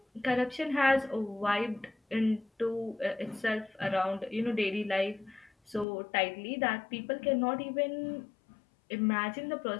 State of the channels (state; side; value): drops out; right; at 5.9 s